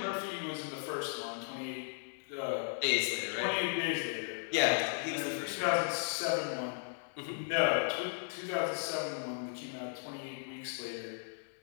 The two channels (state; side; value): silent; right; digital silence